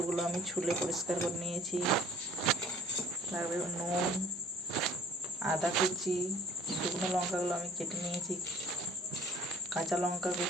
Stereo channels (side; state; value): both; normal; correlation 0.54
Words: আমি ছুলে পরিষ্কার করে নিয়েছি। লাগবে নুন, আদা কুচি, শুকনো লঙ্কাগুলো আমি কেটে নিয়েছি, কাঁচা লঙ্কা